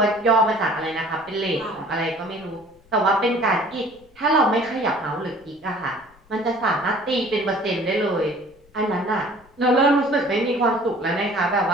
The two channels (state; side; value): noise; left; rumble, 30 dB below the sound